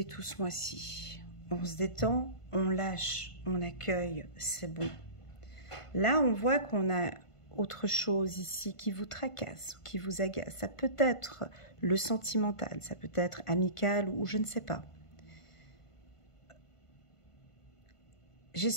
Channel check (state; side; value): late; right; 1.5 ms